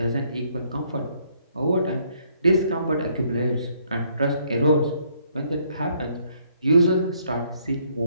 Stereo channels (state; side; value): inverted; both; correlation -0.68